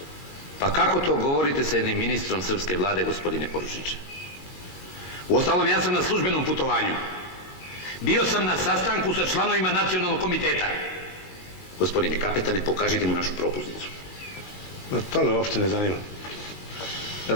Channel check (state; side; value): late; right; 19 ms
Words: Pa kako to govorite sa jednim ministrom srpske vlade, gospodine poručniče? Uostalom, ja sam na službenom putovanju. Bio sam na sastanku sa članovima nacionalnog komiteta. Gospodine kapetane, pokažite mu našu propusnicu. Ma to me uopšte ne zanima.